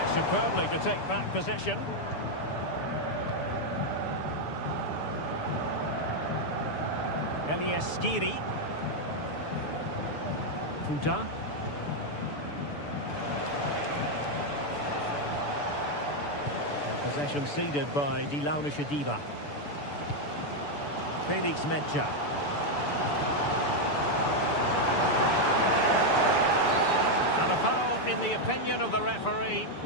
Superbly to take back possession. Elias Skiri. Futa. Possession ceded by Die Launische Diva. Felix Metscher. And a foul in the opinion of the referee.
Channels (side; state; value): right; late; 6.9 ms